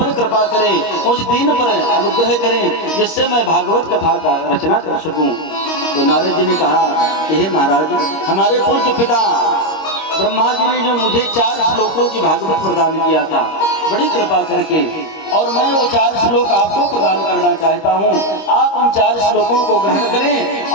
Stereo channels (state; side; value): late; right; 25 ms